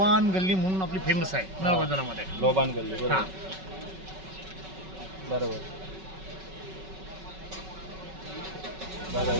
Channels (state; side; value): late; left; 5.3 ms